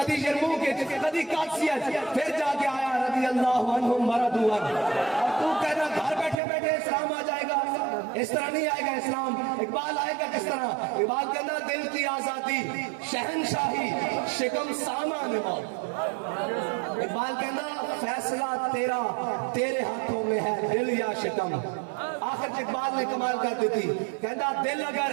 یرموک, کدی قادسیہ. پھر جا کے آیا رضی اللہ عنہم ورضوا عنہ. اور تو کہنا گھر بیٹھے بیٹھے اسلام آ جائے گا, اس طرح نہیں آئے گا اسلام. اقبال آئے گا کس طرح؟ اقبال کہنا دل کی آزادی, شہنشاہی, شکم سامان موت. اقبال کہنا فیصلہ تیرا, تیرے ہاتھوں میں ہے دل یا شکم. آخر اقبال نے کمال کر دی تھی, کہنا دل اگر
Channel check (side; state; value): left; drops out; at 6.4 s